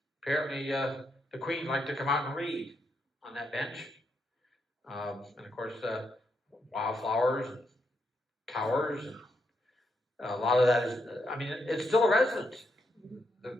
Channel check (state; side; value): normal; both; correlation 0.80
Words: Apparently, the Queen liked to come out and read on that bench. And of course, wildflowers and towers. And a lot of that is, I mean, it's still a residence.